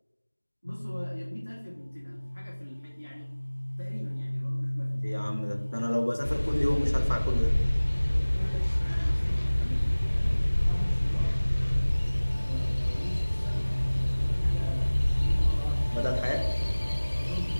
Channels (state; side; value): inverted; both; correlation -1.00